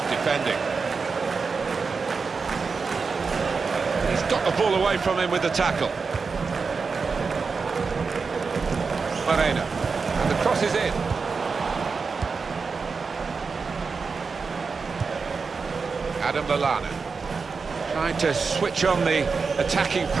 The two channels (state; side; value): quieter; left; 4.9 dB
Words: defending. He's got the ball away from him with the tackle. Moreno, and the cross is in. Adam Lallana trying to switch on the attacking